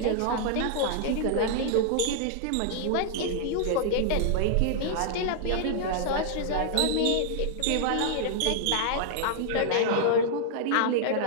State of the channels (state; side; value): different; both; correlation -0.01